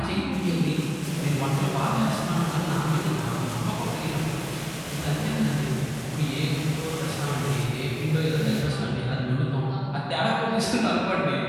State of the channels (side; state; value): both; identical; correlation 1.00